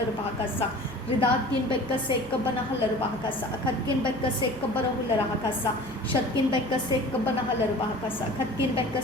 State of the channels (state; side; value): noise; right; hum, 18 dB below the sound